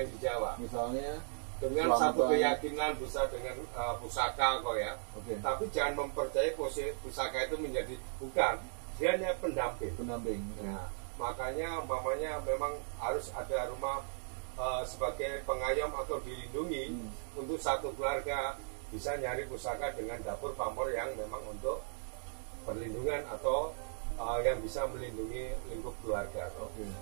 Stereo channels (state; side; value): silent; left; digital silence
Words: di Jawa. Misalnya dengan satu keyakinan bisa dengan pusaka kok ya. Okay. Tapi jangan mempercayai pusaka itu menjadi bukan. Dia hanya pendamping. Nah, makanya umpamanya memang harus ada rumah sebagai pengayom atau dilindungi untuk satu keluarga, bisa nyari pusaka dengan dapur pamor yang memang untuk perlindungan atau yang bisa melindungi lingkup keluarga,